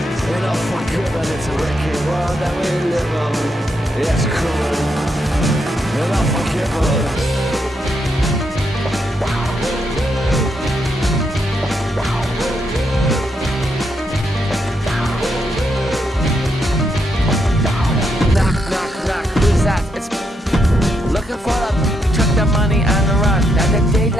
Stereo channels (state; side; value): normal; both; correlation 0.79